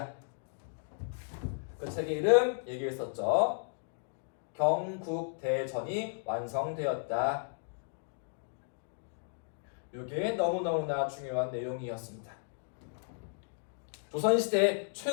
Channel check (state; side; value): silent; right; digital silence